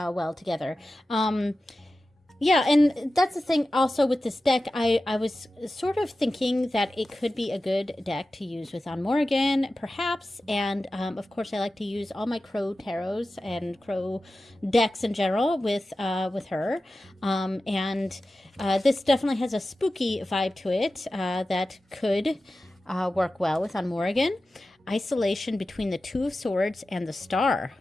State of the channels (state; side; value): normal; both; correlation 0.94